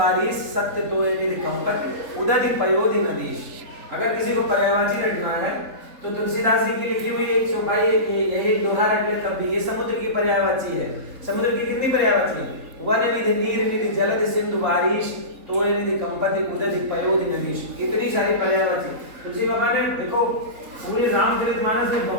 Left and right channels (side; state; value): left; late; 3.8 ms